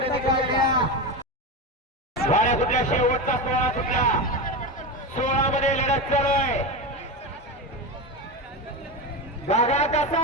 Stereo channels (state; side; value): normal; both; correlation 0.19